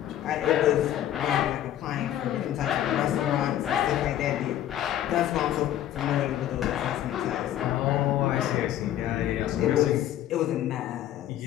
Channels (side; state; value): right; quieter; 11.9 dB